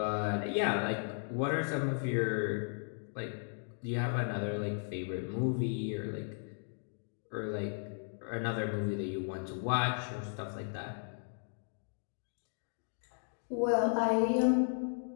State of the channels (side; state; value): right; silent; digital silence